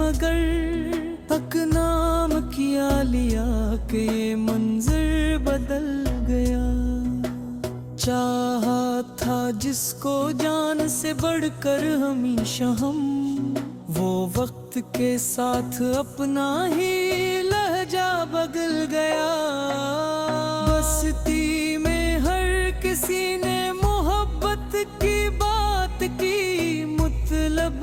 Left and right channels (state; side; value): identical; both; correlation 1.00